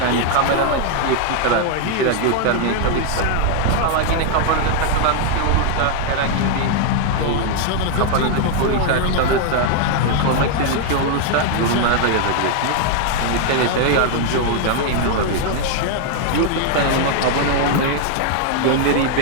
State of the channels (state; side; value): different; both; correlation 0.00